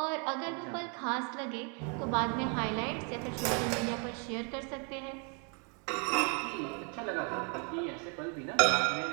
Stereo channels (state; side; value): quieter; left; 36.9 dB